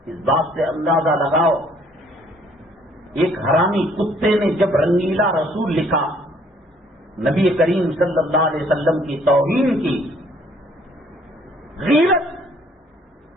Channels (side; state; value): both; normal; correlation 0.61